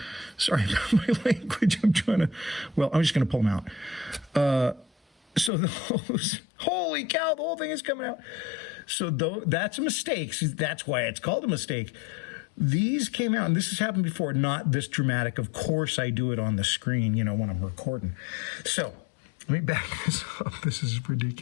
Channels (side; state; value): right; drops out; at 5.5 s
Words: Sorry about my language. I'm just going to pull them out. So those, holy cow, the whole thing is coming out. So that's a mistake. That's why it's called a mistake. These came out, and this has happened before, not this dramatic. Of course, I do it on the screen, when I'm recording. So let me back this up. This is